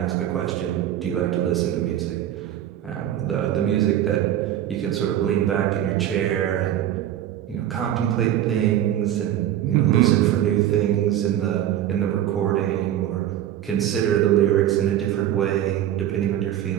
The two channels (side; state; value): left; quieter; 11.7 dB